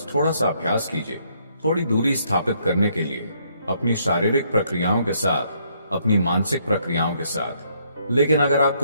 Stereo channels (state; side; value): inverted; both; correlation -0.70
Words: थोड़ा सा अभ्यास कीजिए। थोड़ी दूरी स्थापित करने के लिए अपनी शारीरिक प्रक्रियाओं के साथ, अपनी मानसिक प्रक्रियाओं के साथ। लेकिन अगर आप